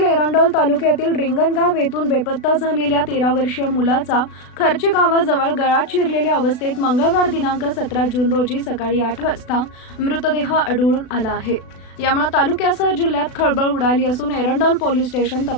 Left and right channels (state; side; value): late; right; 36 ms